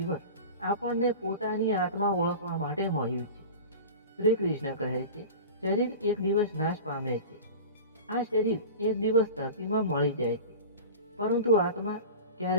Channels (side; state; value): both; inverted; correlation -0.33